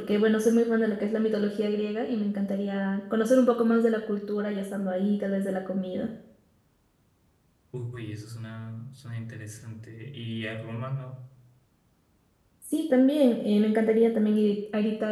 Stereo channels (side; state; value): both; identical; correlation 1.00